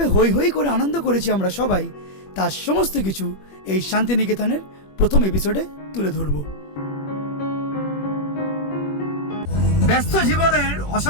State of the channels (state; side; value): late; right; 21 ms